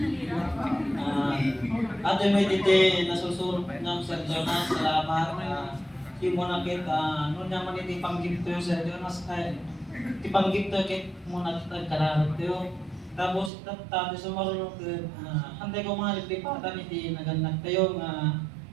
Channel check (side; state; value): left; drops out; at 13.5 s